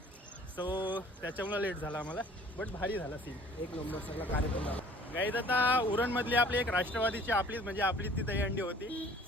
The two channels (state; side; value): normal; both; correlation 0.52